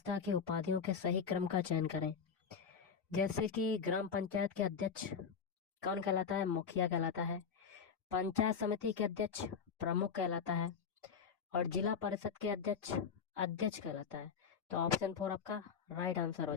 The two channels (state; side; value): quieter; right; 6.4 dB